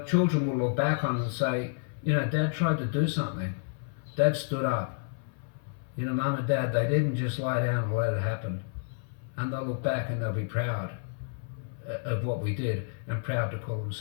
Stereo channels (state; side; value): silent; right; 58 dB below the other